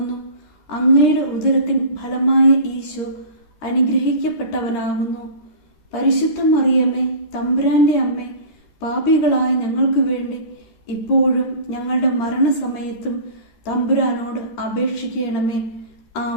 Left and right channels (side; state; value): right; late; 13 ms